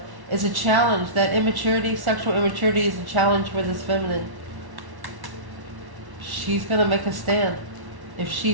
it's a challenge. That immaturity, sexual immaturity, is a challenge for this feminine. She's going to make a stand. If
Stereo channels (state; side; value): late; left; 1.1 ms